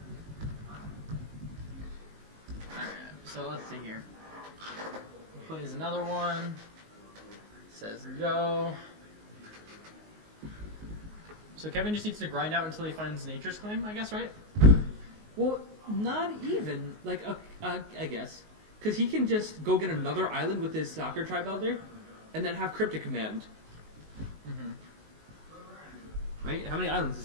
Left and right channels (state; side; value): late; left; 19 ms